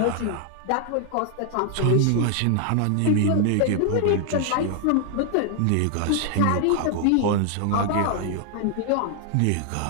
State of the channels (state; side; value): different; both; correlation 0.00